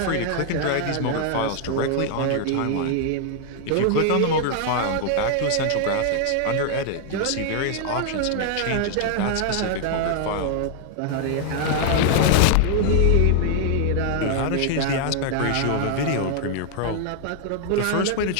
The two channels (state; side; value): different; both; correlation 0.00